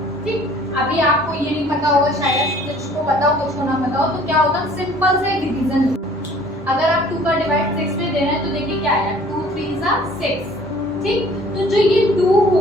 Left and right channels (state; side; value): normal; both; correlation 0.53